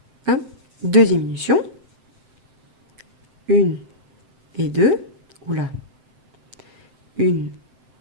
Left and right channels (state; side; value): late; left; 7.7 ms